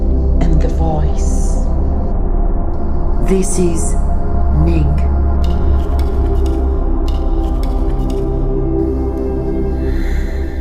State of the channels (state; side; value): identical; both; correlation 1.00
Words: and the voice. This is Ning.